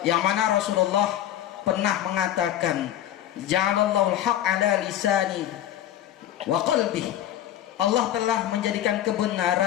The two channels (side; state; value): right; quieter; 11.6 dB